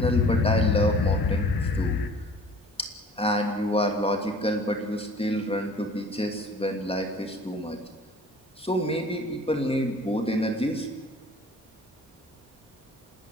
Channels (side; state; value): both; normal; correlation 0.48